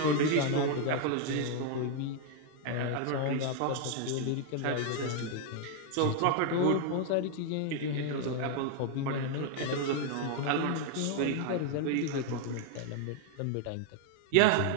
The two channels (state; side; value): different; both; correlation 0.00